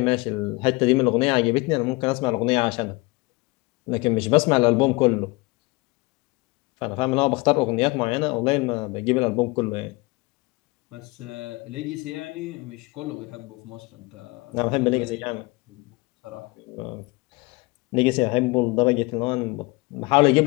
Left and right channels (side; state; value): right; quieter; 24.5 dB